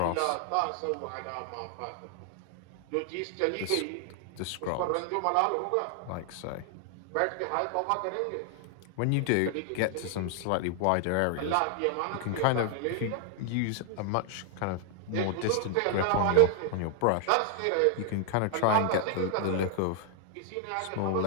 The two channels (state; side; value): different; both; correlation 0.00